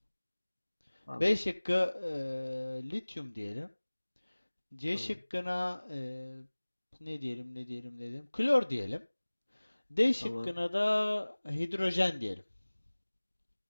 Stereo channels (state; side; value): inverted; both; correlation -1.00